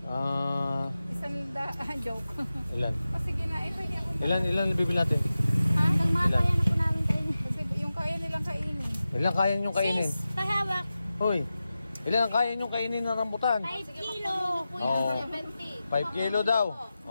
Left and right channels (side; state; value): both; inverted; correlation -0.94